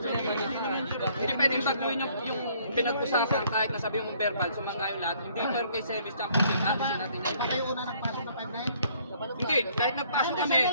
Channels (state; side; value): inverted; both; correlation -0.62